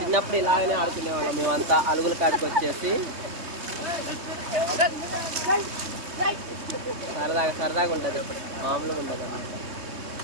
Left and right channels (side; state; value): left; late; 3.2 ms